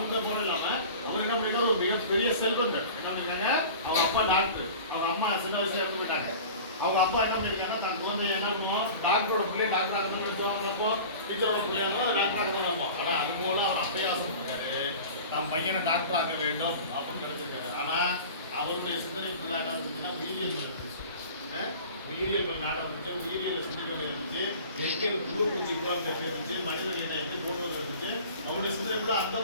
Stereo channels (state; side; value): inverted; both; correlation -0.39